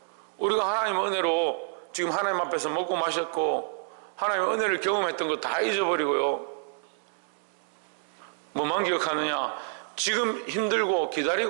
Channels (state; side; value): silent; left; digital silence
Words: 우리가 하나님의 은혜로 지금 하나님 앞에서 먹고 마셨고 하나님의 은혜를 경험했던 거 다 잊어버리고요, 뭐만 기억하느냐? 지금 힘들고